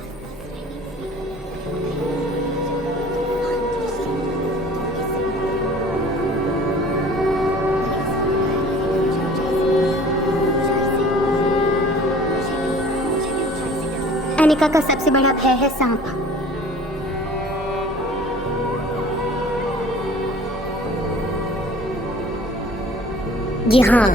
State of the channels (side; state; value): both; normal; correlation 0.48